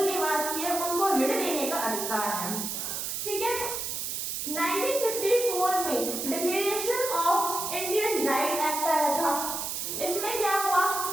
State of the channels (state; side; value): noise; right; hiss, 3 dB below the sound